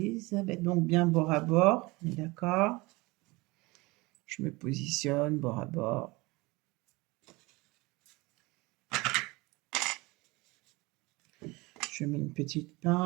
Donc, bien bord à bord, on est d'accord? Je me positionne bord à bord. Je mets une petite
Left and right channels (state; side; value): quieter; left; 23.4 dB